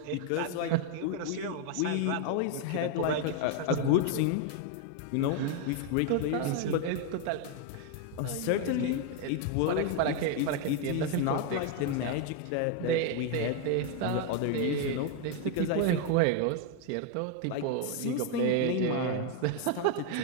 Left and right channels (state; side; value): different; both; correlation 0.01